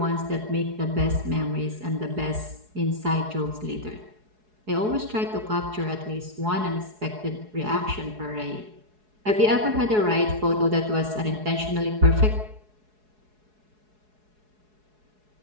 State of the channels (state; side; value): late; left; 4.7 ms